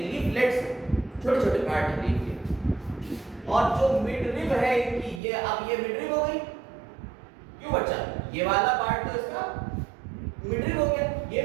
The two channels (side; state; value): left; drops out; at 5.2 s